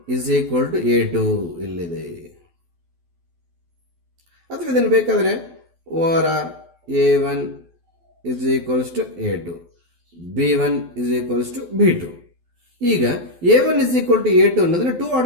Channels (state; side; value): late; left; 12 ms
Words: is equal to A2 ಇಲ್ಲಿದೆ. ಅಥವಾ ಇದನ್ನು ಬೇಕಾದರೆ over or A1 is equals to A2, B1 is equals to B2. ಈಗ A1 is equal to A2 ಅನ್ನೋದನ್ನ 2